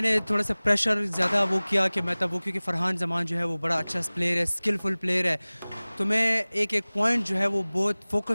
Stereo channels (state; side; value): inverted; both; correlation -1.00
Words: थोड़ा सा प्रेशर ज़्यादा वो किया कि मैं तब वो, क्योंकि फरहान जमान जो है वो बड़ा अच्छा प्लेयर है, स्किलफुल प्लेयर है, तो मैं एक एक पॉइंट जो है वो बहुत